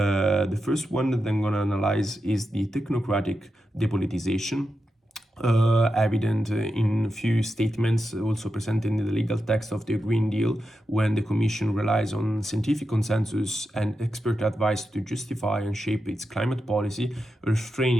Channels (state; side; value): normal; both; correlation 0.89